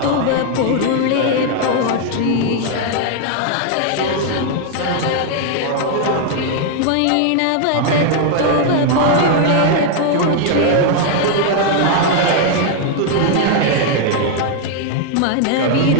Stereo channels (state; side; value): different; both; correlation 0.00